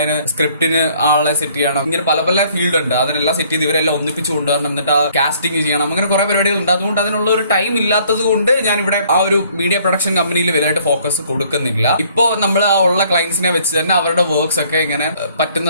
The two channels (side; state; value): both; inverted; correlation -0.61